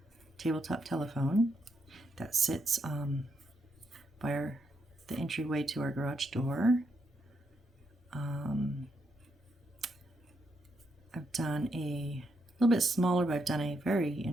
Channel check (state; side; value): normal; both; correlation 0.79